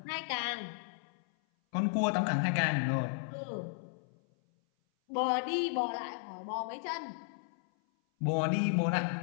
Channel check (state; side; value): silent; right; 55 dB below the other